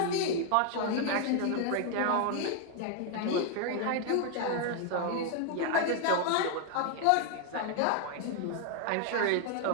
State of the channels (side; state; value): both; different; correlation 0.00